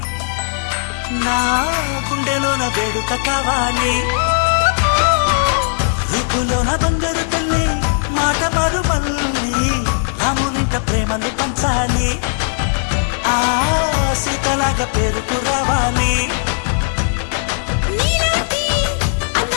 నా గుండెలోన వేడుక కావాలి రూపులోన బంగారు తల్లి మాట పరుమల్లి రామునింట ప్రేమలు పంచాలి ఆ సీతలాగా పేరుకు రావాలి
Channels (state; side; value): silent; right; digital silence